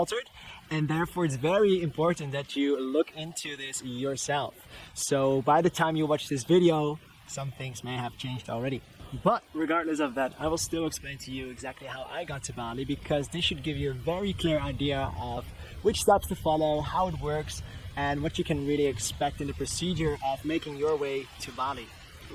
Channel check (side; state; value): both; identical; correlation 1.00